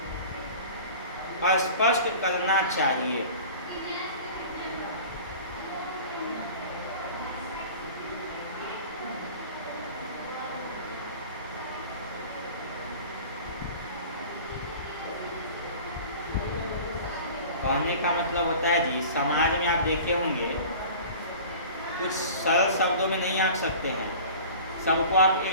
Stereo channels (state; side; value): inverted; both; correlation -0.41